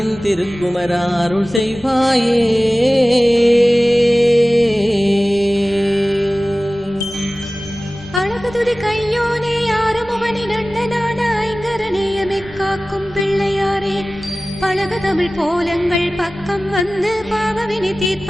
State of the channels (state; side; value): noise; left; rumble, 24 dB below the sound